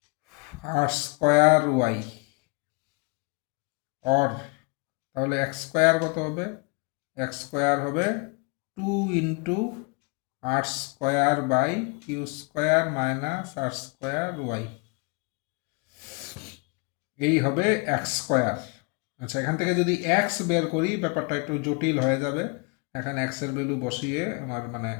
R square Y. Or তাহলে এক্স স্কোয়ার কত হবে, এক্স স্কোয়ার হবে 2 into R square by Q square minus R square Y, এই হবে এক্স স্কোয়ার। আচ্ছা, এখান থেকে যদি এক্স বের করি ব্যাপারটা একটু জটিল হয়ে যাবে, এখানে এক্সের ভ্যালু বসিয়ে আমার মানে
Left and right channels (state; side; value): quieter; right; 31.1 dB